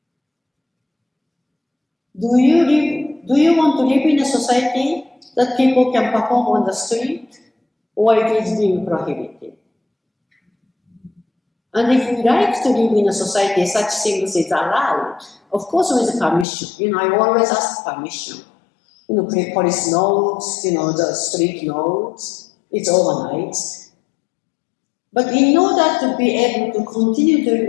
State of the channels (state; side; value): drops out; right; at 16.4 s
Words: do you want to live in a society that people can perform on the street, or it is being prohibited? And if we like to live in a society such things is allowed, of course with permission. You know, I always ask permission. You know, police notes, you know, the street notes, it's organized. But in order to be able to continue to